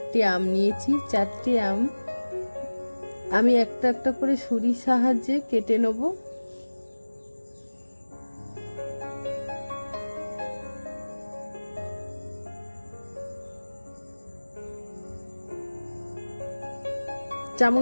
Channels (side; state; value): both; inverted; correlation -1.00